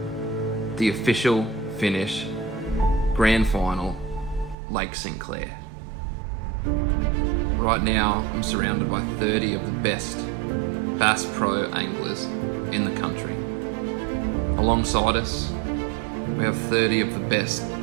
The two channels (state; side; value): drops out; left; at 4.5 s